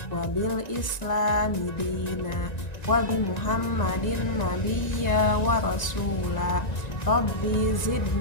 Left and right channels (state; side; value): late; right; 1.9 ms